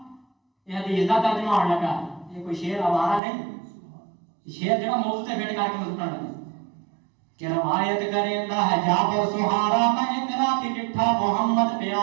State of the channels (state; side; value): drops out; left; at 3.2 s